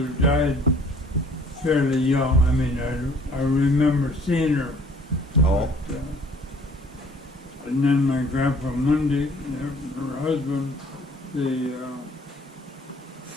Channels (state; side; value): normal; both; correlation 0.56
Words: died fairly young. I mean, I remember seeing her. Oh, And then my grandpa Monday, her husband,